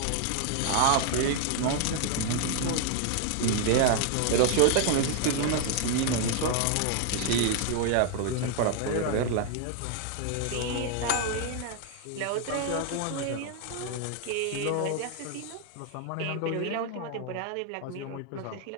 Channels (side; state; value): both; different; correlation 0.00